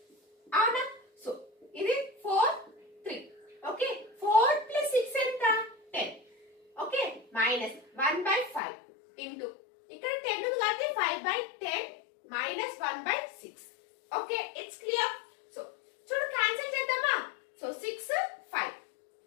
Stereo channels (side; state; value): right; drops out; at 8.6 s